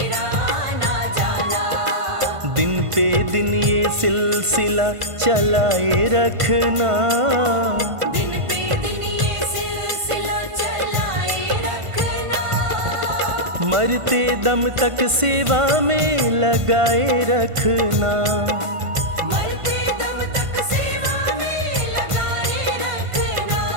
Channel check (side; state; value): left; late; 1.5 ms